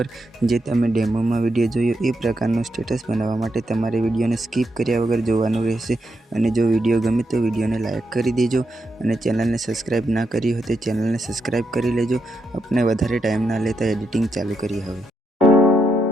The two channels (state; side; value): normal; both; correlation 0.82